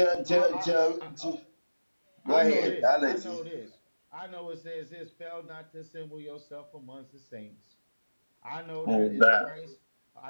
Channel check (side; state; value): both; inverted; correlation -1.00